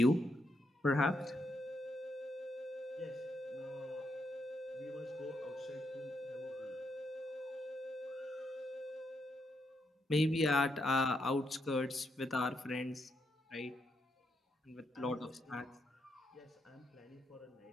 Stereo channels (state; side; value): normal; both; correlation 0.80